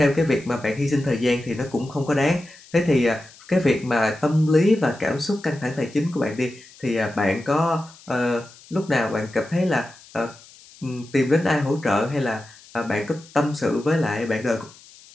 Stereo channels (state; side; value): noise; left; hiss, 23 dB below the sound